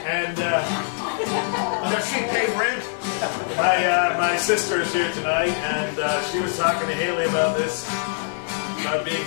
And Does she pay rent? my sister is here tonight, and she was talking to Haley about this, about being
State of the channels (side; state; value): right; silent; digital silence